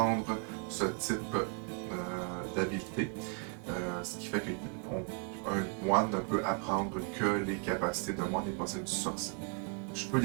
ce type d'habilité. Ce qui fait qu'un moine ne peut apprendre que les capacités de moine et pas celles du sorcier. Je peux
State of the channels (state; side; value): quieter; left; 33.8 dB